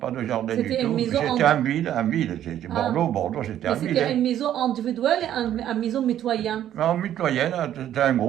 de jardin du C'était une tout. maison C'était en ville. C'était Ah. Bordeaux, c'était Mais en ville. c'était une Hein. maison individuelle et une maison mitoyenne. En mitoyenne, c'était un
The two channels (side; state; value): left; quieter; 11.3 dB